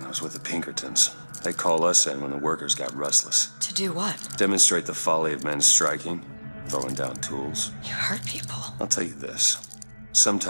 I was with the Pinkertons. They call us in when the workers got restless. To do what? Demonstrate the folly of men striking, throwing down tools. You hurt people. I'll tell you this.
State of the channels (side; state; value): both; inverted; correlation -1.00